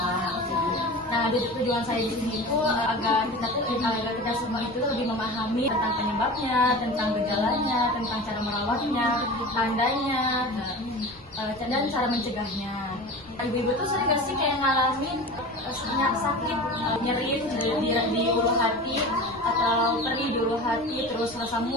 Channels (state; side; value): noise; left; rumble, 26 dB below the sound